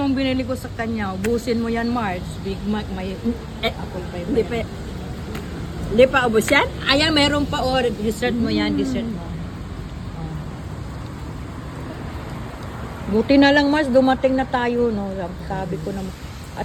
binili ko sa kanya. Ubusin mo yan, Marge. Big Mac, may... Apple pie ba yan? Hindi pa ubos yan? Ayan, meron pa. O, dessert mo yan, dessert mo. Buti na lang, Marge, dumating na tayo, no? Sabi ko na...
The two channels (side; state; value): both; identical; correlation 1.00